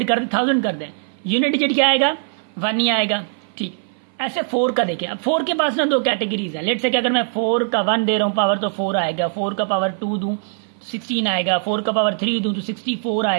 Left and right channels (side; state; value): left; silent; 58 dB below the other